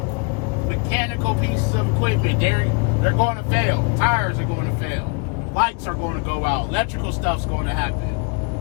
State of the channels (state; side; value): quieter; right; 31.3 dB